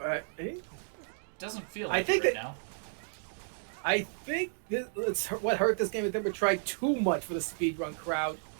Doesn't feel I like think it right that- now. I think what hurt this game is they would try too much for the speedrun crowd.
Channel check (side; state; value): left; silent; digital silence